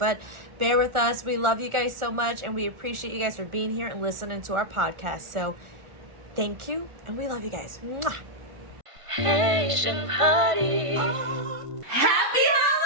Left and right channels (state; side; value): late; left; 1.5 ms